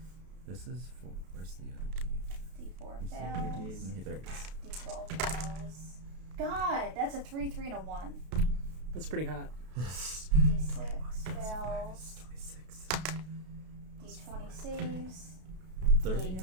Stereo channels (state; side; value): late; left; 32 ms